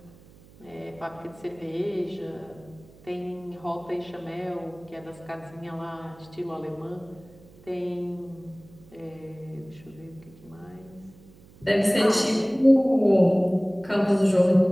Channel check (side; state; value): right; noise; hum, 24 dB below the sound